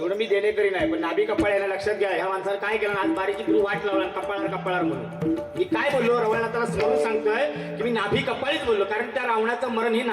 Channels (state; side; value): identical; both; correlation 1.00